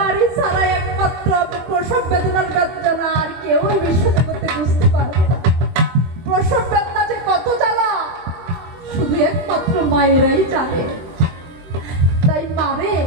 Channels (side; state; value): left; late; 23 ms